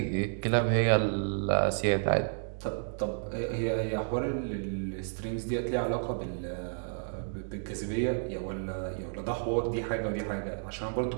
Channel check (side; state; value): left; silent; digital silence